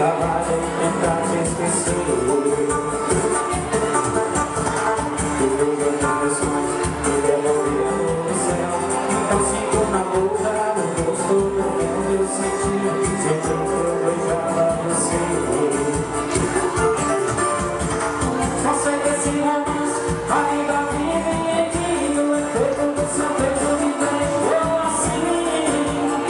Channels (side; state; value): both; identical; correlation 1.00